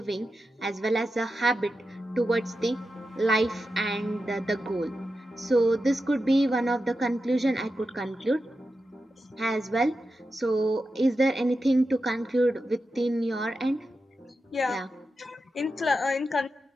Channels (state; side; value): normal; both; correlation 0.90